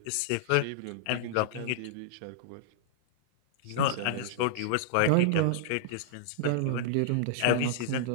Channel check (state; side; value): different; both; correlation -0.02